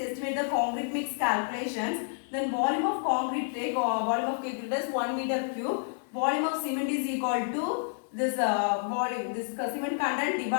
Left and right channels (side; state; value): right; silent; 58 dB below the other